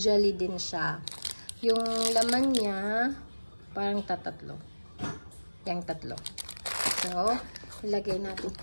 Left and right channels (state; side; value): inverted; both; correlation -1.00